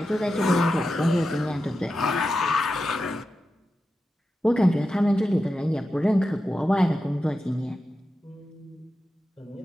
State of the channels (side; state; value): both; normal; correlation 0.91